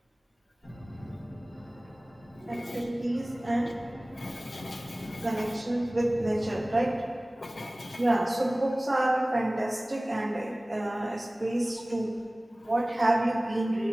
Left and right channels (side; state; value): both; normal; correlation 0.98